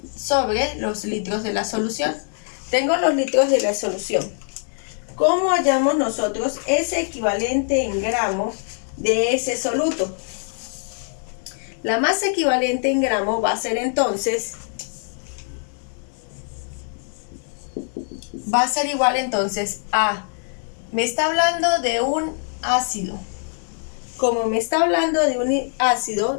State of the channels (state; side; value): silent; right; 64 dB below the other